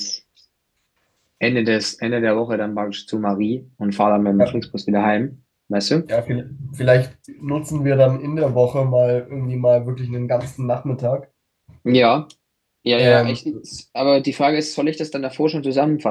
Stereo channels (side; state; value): both; identical; correlation 1.00